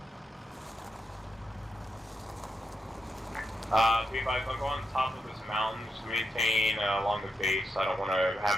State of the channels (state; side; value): normal; both; correlation 0.84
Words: Be advised, I'll go on top of this mountain, just maintain along the base. I don't want to